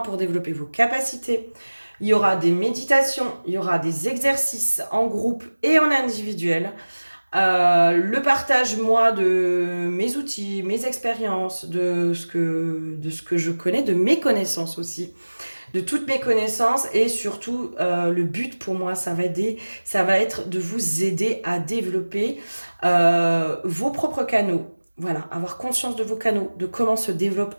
développer vos capacités. Il y aura des méditations, il y aura des exercices en groupe et en individuel. Le partage, moi, de mes outils, mes expériences, de ce que je connais, de mes connaissances aussi, de toutes mes connaissances et surtout, le but pour moi, ça va être de vous aider à développer vos propres canaux. Voilà, avoir conscience de vos canaux, de comment se développe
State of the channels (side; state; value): both; inverted; correlation -1.00